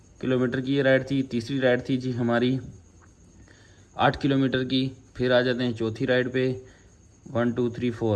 किलोमीटर की ये राइड थी। तीसरी राइड थी जी हमारी 8 किलोमीटर की। फिर आ जाते हैं चौथी राइड पे, 1 2 3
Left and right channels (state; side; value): identical; both; correlation 1.00